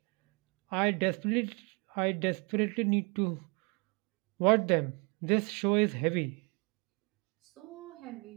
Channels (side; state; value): left; quieter; 32.4 dB